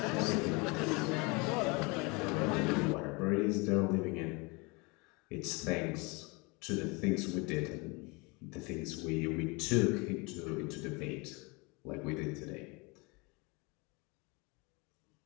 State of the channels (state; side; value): quieter; right; 28.0 dB